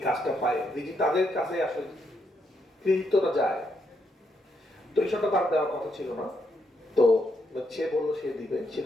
কাজটা পায়, তাদের কাছে আসলে কৃতিত্বটা যায়। তো এই শটটা তার দেওয়ার কথা ছিল না, তো সে বললো সে দিবে। সে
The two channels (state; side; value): normal; both; correlation 0.78